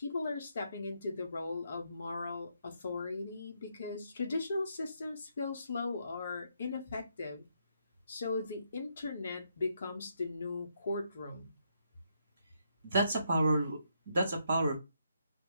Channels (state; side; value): inverted; both; correlation -0.77